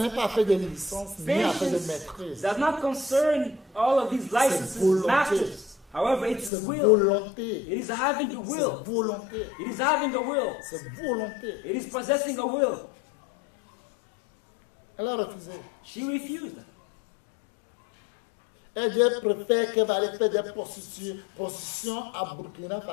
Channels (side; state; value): right; drops out; at 6.5 s